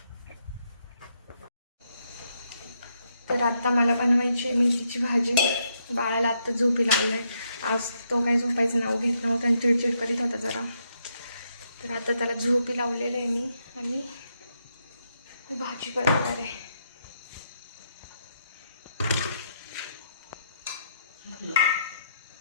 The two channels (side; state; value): both; inverted; correlation -0.77